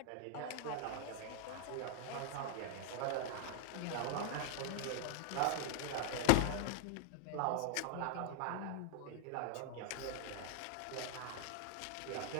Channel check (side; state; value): both; different; correlation 0.00